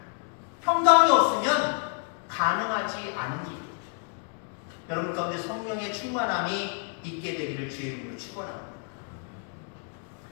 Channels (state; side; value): quieter; right; 39.7 dB